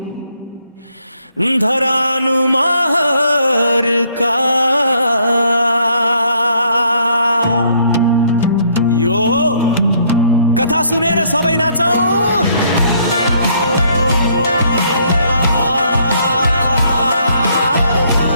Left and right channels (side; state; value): both; inverted; correlation -0.67